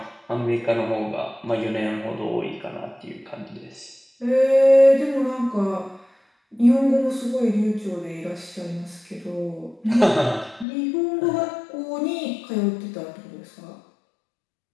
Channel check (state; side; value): drops out; right; at 10.7 s